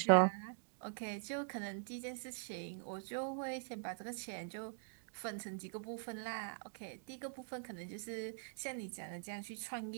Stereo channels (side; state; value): left; silent; digital silence